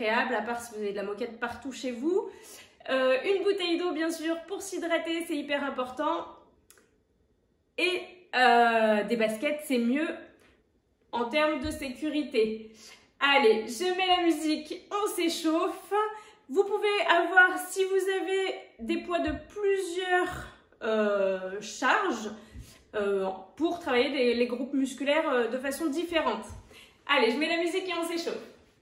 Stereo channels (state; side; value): identical; both; correlation 1.00